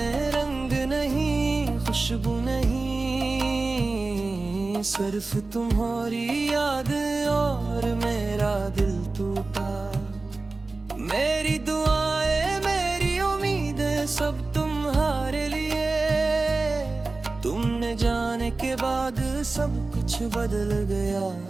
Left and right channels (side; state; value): left; quieter; 3.5 dB